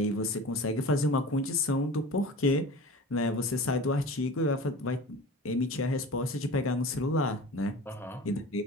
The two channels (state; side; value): normal; both; correlation 0.36